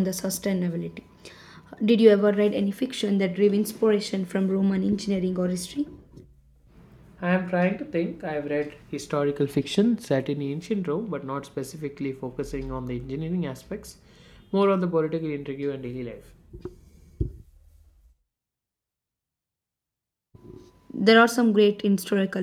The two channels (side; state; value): both; identical; correlation 1.00